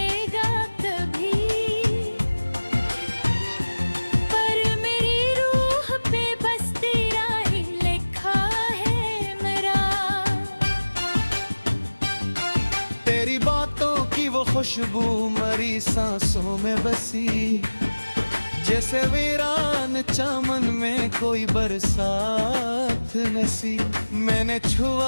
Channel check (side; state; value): both; inverted; correlation -1.00